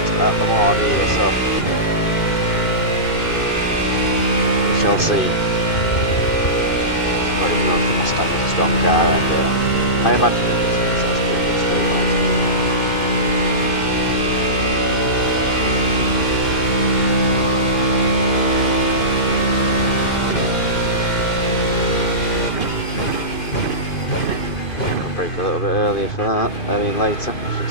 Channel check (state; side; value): late; right; 2.5 ms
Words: at Lemans either, so we shall see. I don't even know if the Mustang is a strong car, and I imagine it is, because that's pretty much straight line speed. A little bit earlier for that, I mean later, I should